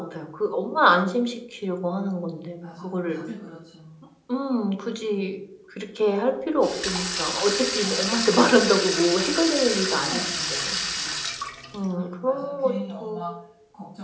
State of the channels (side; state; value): both; identical; correlation 1.00